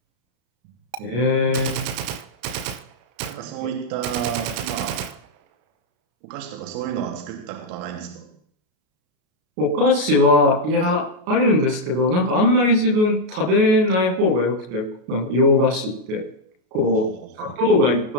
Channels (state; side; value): late; left; 33 ms